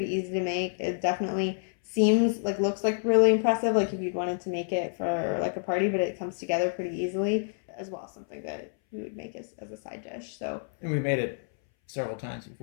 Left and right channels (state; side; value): silent; right; 59 dB below the other